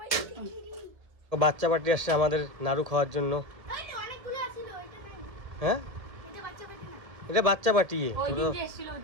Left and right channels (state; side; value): late; left; 1.7 ms